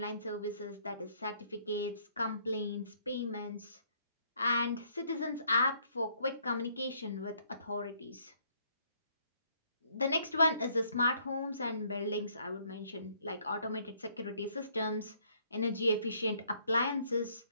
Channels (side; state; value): both; inverted; correlation -0.66